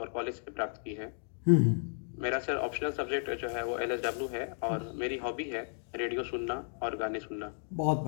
कॉलेज से प्राप्त की है। मेरा सर ऑप्शनल सब्जेक्ट जो है वो LSW है और मेरी हॉबी है रेडियो सुनना और गाने सुनना। बहुत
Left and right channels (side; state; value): right; silent; digital silence